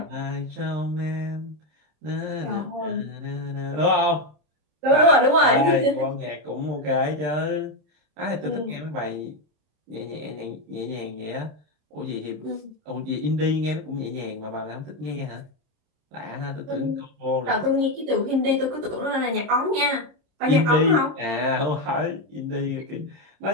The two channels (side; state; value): left; late; 26 ms